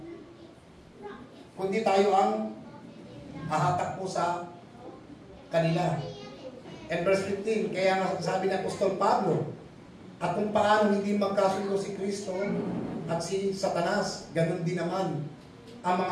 Kundi tayo ang hahatak po sa kanila. And verse 15, kaya nga sabi ng Apostol Pablo, at kung paano hindi magkasundo si Kristo at si Satanas, ganun din naman ang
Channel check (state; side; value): identical; both; correlation 1.00